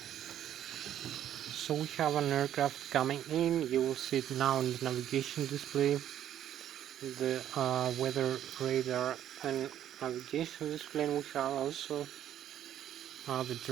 So we have an aircraft coming in. You will see it now in the navigation display, the weather radar and navigation display, and we have also the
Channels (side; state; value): left; quieter; 11.0 dB